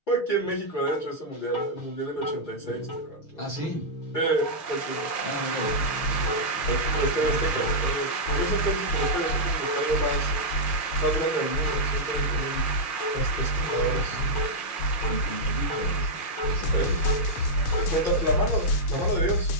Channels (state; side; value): late; right; 6.4 ms